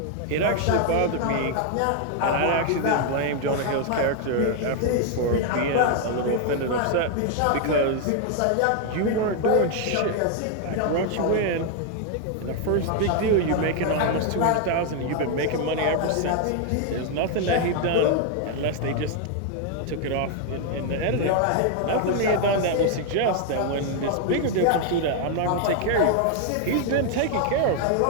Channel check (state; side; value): different; both; correlation 0.00